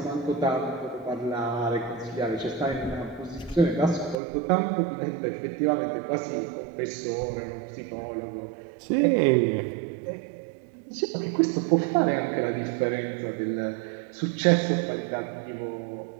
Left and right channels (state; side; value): drops out; left; at 4.2 s